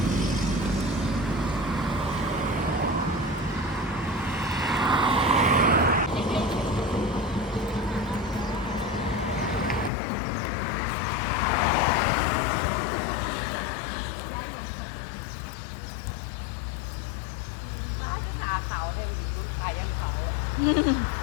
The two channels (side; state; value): right; drops out; at 9.9 s